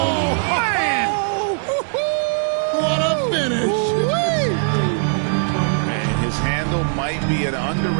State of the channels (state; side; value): silent; left; digital silence